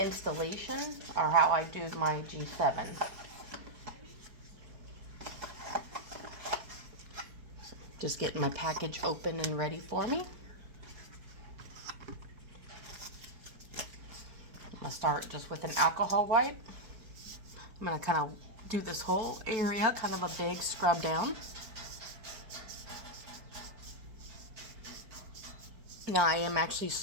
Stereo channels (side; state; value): left; late; 4.5 ms